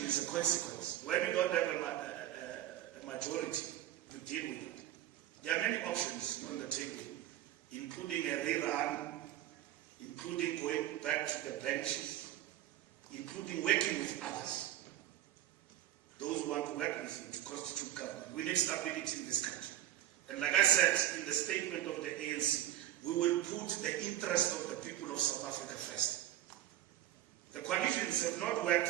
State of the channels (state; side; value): quieter; left; 13.1 dB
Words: is a consequence. When you don't have a majority to deal with it, there are many options on the table, including a rerun, including going back to the benches, including working with others. Those who want to work with you to constitute government. We need stability in this country. And like I said in the statement of the ANC, we will put the interest of the people of South Africa first. The coalitions have not worked